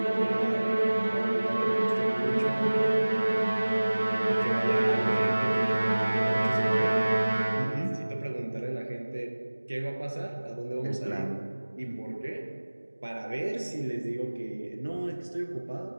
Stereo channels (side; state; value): both; inverted; correlation -1.00